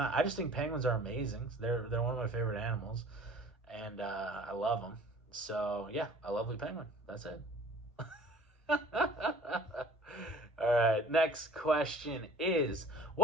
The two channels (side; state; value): both; normal; correlation 0.50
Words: I just think penguins are amazing. They're one of my favorite animals, and I love them. So yeah, a lovely penguin. That's it. All right, next question is,